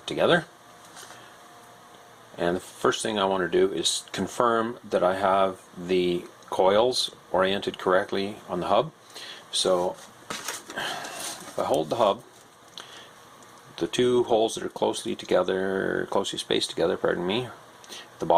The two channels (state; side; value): identical; both; correlation 1.00